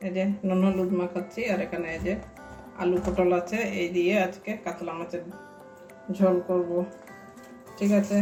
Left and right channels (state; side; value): identical; both; correlation 1.00